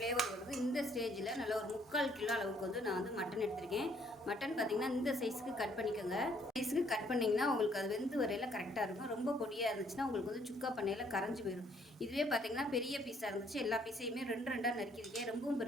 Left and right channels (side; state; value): both; normal; correlation 0.65